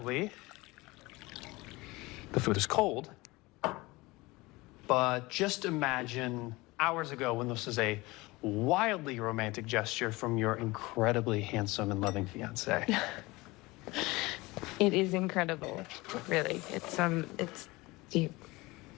the food is cold. But just imagine hours ago when this was a wildly romantic gesture from your incredibly handsome and loving fiance. It is incredible, really. It's you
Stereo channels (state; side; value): quieter; right; 22.0 dB